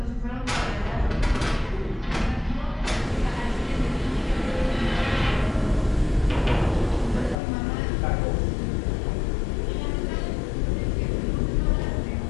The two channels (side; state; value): right; drops out; at 7.4 s